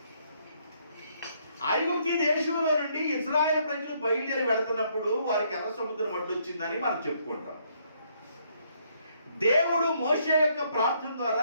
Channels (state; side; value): inverted; both; correlation -0.70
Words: ఐగుప్తు దేశంలో నుండి ఇశ్రాయేలు ప్రజలు బయలుదేరి వెళుతున్నప్పుడు వారికి ఎర్ర సముద్రం అడ్డొచ్చిందని మనం చెప్పుకుంటాం. దేవుడు మోషే యొక్క ప్రార్థన